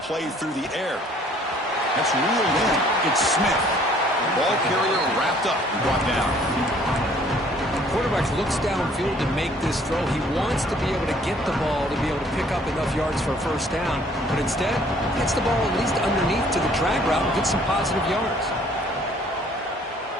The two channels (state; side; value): normal; both; correlation 0.58